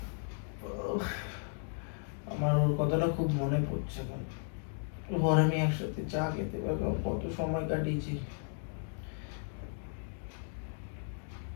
খুব মনে পড়ছে এখন। ঘরে আমি একসাথে চা খেতে পারলাম, কত সময় কাটিয়েছি।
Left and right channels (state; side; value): silent; right; digital silence